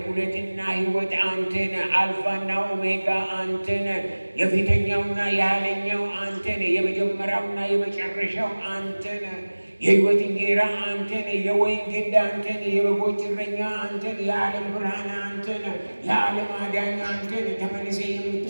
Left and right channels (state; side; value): inverted; both; correlation -1.00